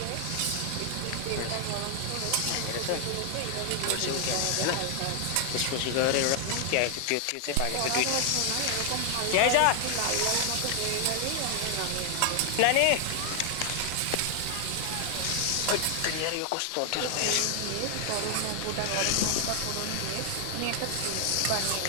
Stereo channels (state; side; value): different; both; correlation 0.00